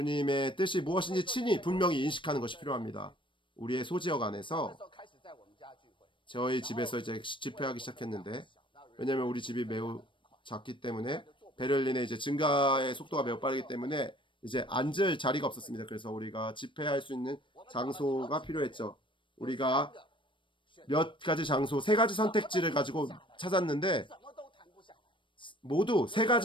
뜻이 무엇인지 친히 분명히 인식하는 것이 필요합니다. 우리의 소지역 안에서 저희 집에서 이제 집회하기 시작했는데, 왜냐하면 우리 집이 매우 작기 때문에 베를린의 이제 증가의 속도가 매우 빠르기 때문에 이제 앉을 자리가 없었습니다. 그래서 우리가 집회할 수 있는 장소가 필요했죠. 우리가 몇 가지 장소, 세 가지 선택지를 가지고 찾았는데 모두 세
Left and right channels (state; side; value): late; right; 0.24 ms